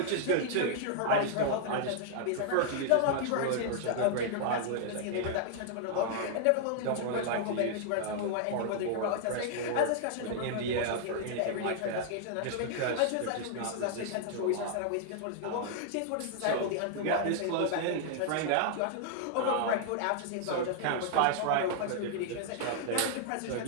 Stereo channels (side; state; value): both; different; correlation -0.01